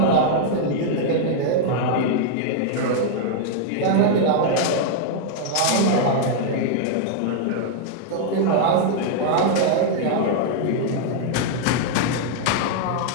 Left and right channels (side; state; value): both; different; correlation -0.01